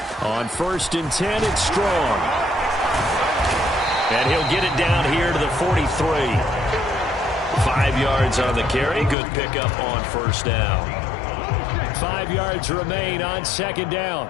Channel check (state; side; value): drops out; right; at 9.2 s